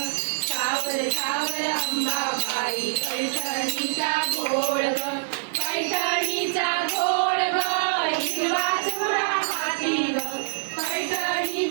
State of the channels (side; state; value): left; silent; digital silence